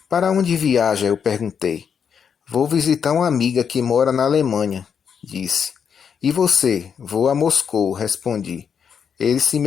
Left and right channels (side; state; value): right; quieter; 7.1 dB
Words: Para onde viaja? Eu perguntei. Vou visitar uma amiga que mora na Alemanha, disse. E você? Vou a Moscou, respondi. Ele se